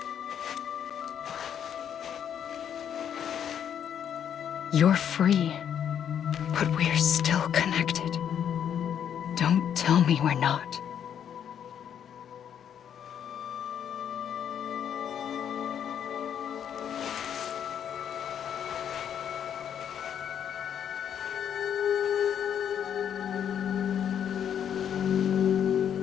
You're free, but we're still connected. Don't tell me we're not.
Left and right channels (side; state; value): right; quieter; 8.9 dB